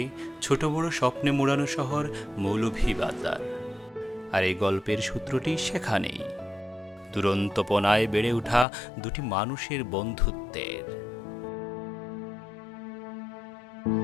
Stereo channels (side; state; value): right; drops out; at 8.7 s